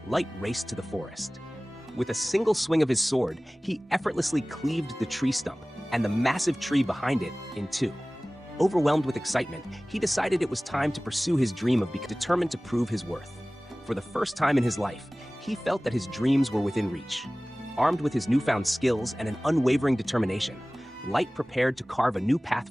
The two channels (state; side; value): normal; both; correlation 0.98